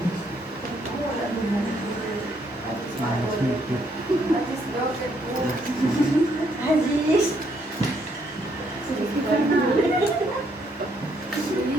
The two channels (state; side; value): normal; both; correlation 0.71